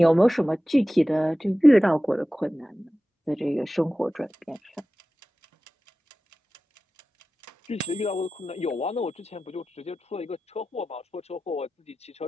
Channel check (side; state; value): both; normal; correlation 0.95